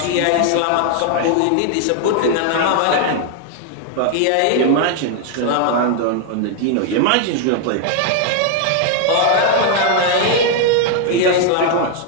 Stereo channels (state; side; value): different; both; correlation 0.00